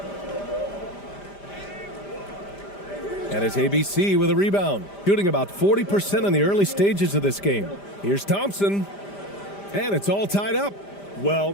And it's ABC with a rebound. Shooting about 40% in the early stages of this game. Here's Thompson. And it's all tied up.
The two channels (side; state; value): right; late; 5.0 ms